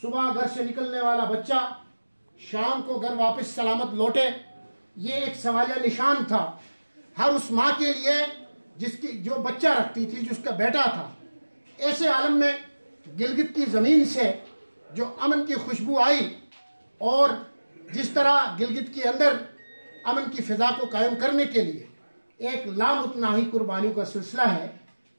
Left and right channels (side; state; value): both; inverted; correlation -1.00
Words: घर से निकलने वाला बच्चा शाम को घर वापस सलामत लौटे, ये एक सवालिया निशान था हर उस माँ के लिए जिसकी जो बच्चा रखती थी, जिसका बेटा था। ऐसे आलम में गिलगित की ज़मीन से जो अमन की खुशबू आई और जिस तरह गिलगित के अंदर अमन की फ़िज़ा को कायम करने के लिए एक लामुतनाही कुर्बानियों का सिलसिला है,